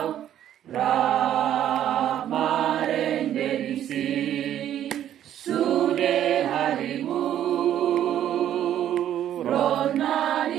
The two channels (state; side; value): quieter; left; 11.1 dB